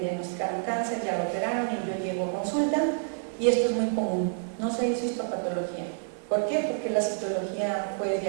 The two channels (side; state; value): left; silent; digital silence